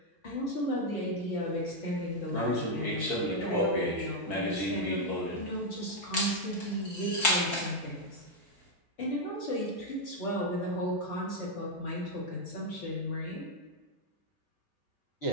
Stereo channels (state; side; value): late; right; 4.6 ms